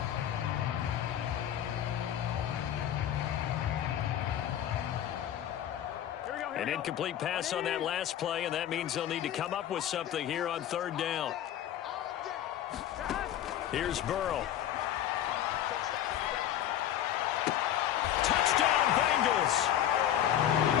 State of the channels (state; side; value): quieter; right; 11.2 dB